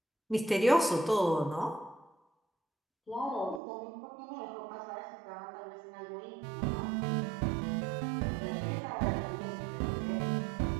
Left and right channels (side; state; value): left; drops out; at 3.6 s